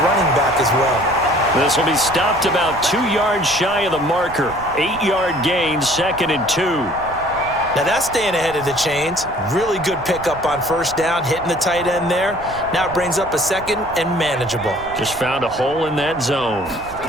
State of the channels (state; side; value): noise; right; rumble, 17 dB below the sound